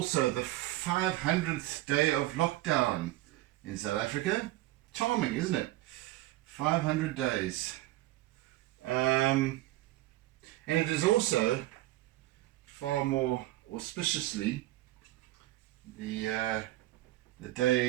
the 500th day of lockdown in South Africa. Charming, isn't it? 500 days. And it is also far more auspiciously the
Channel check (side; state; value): left; quieter; 17.0 dB